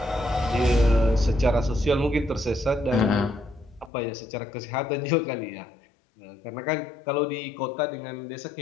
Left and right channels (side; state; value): right; drops out; at 3.9 s